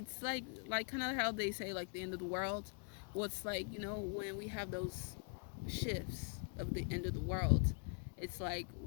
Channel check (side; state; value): right; quieter; 37.8 dB